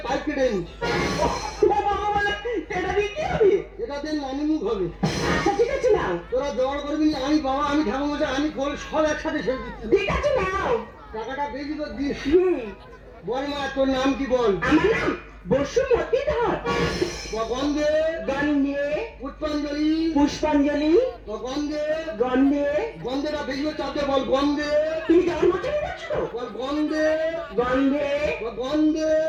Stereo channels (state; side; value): identical; both; correlation 1.00